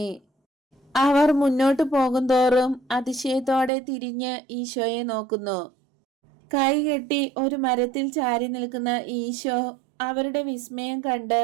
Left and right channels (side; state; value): left; drops out; at 3.7 s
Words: അവർ മുന്നോട്ട് പോകുന്തോറും അതിശയത്തോടെ തിരിഞ്ഞ് ഈശോയെ നോക്കുന്നു. കൈകെട്ടി ഒരു മരത്തിൽ ചാരി നിൽക്കുന്ന ഈശോ അവരുടെ വിസ്മയം കണ്ട്